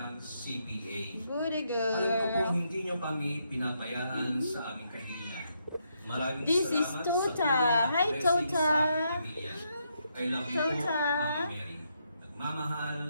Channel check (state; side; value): inverted; both; correlation -0.78